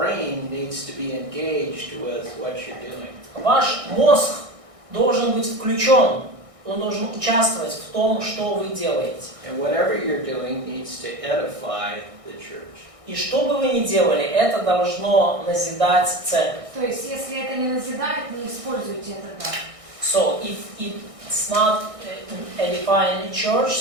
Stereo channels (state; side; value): late; left; 1.6 ms